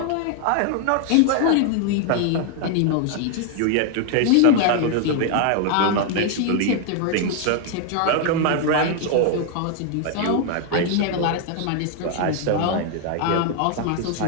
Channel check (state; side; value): different; both; correlation 0.00